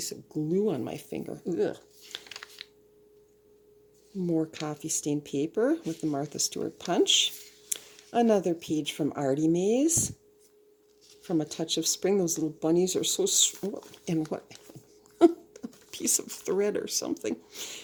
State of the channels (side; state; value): both; identical; correlation 1.00